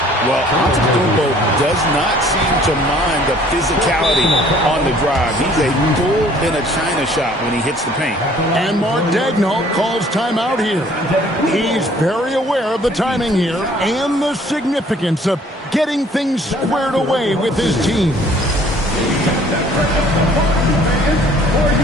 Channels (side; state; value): both; normal; correlation 0.56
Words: Well, Antetokounmpo does not seem to mind the physicality on the drive. He's a bull in a China shop when he hits the paint. And Mark Daigneault calls timeout here. He's very aware of the timing here and the significance of getting things squared away with his team.